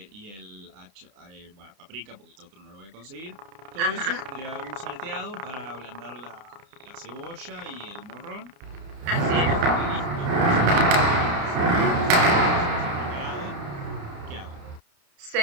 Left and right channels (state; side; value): late; left; 31 ms